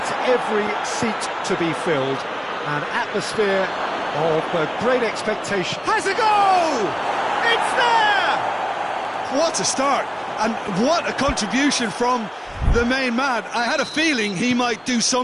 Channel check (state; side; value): identical; both; correlation 1.00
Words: every seat to be filled. An atmosphere of great expectation. Has a goal! It's there! What a start, and what a contribution from the main man. I had a feeling he might do